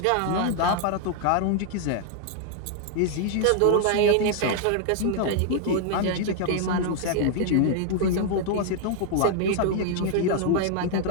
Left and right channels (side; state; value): both; different; correlation 0.00